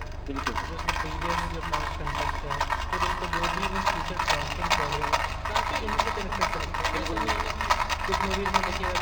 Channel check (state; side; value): identical; both; correlation 1.00